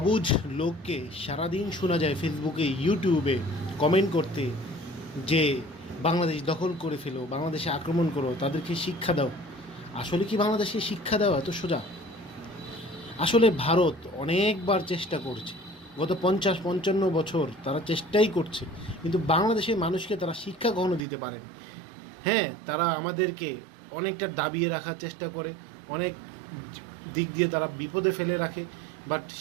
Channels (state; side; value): drops out; left; at 21.0 s